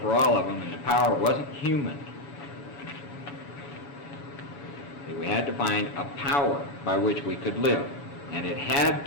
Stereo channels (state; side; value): late; right; 7.3 ms